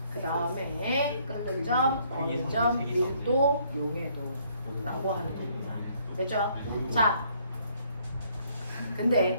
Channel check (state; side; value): inverted; both; correlation -0.66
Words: 그 다음에 끓는 점, 어느 점, 밀도, 용해도라고 하는 겁니다. 됐죠? 자,